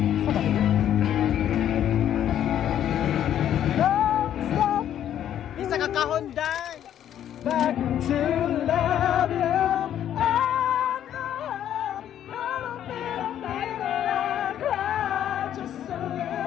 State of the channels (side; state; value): right; quieter; 10.6 dB